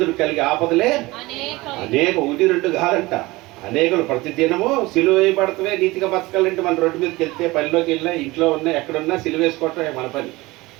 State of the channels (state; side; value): quieter; left; 21.0 dB